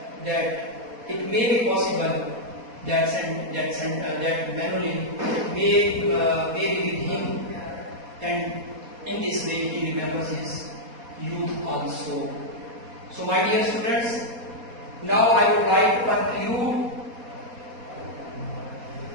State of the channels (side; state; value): left; late; 4.2 ms